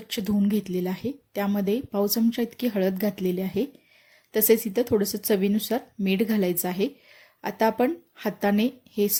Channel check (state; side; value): identical; both; correlation 1.00